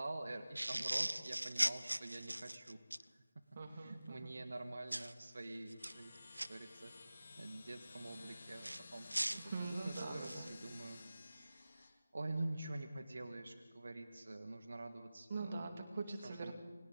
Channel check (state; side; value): inverted; both; correlation -0.97